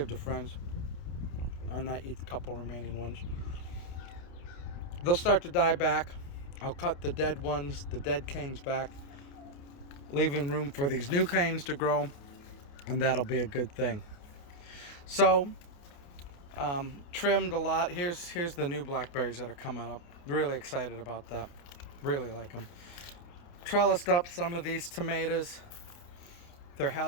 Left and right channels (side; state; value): right; late; 29 ms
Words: to friends. And I eat a couple remaining ones. They'll start to die back. I'll cut the dead ones, the dead canes back, leaving room for these new canes to grow, and that'll be a good thing. So, trimmed a lot. Here's the new blackberries that are coming up. Really excited about that. Really like them. Trellised up some of these tomatoes. They're